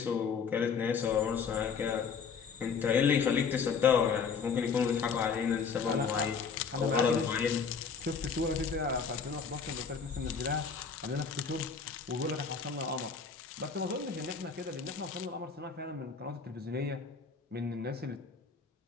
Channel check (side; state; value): right; quieter; 5.8 dB